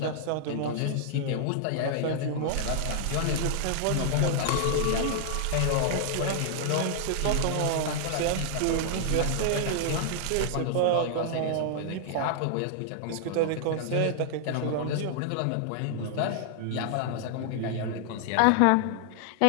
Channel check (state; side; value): different; both; correlation -0.01